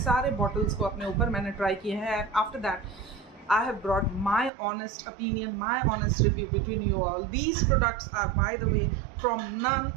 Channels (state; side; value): drops out; left; at 4.5 s